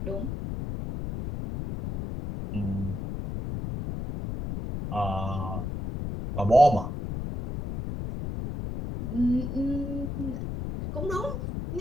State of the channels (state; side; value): noise; left; rumble, 5 dB below the sound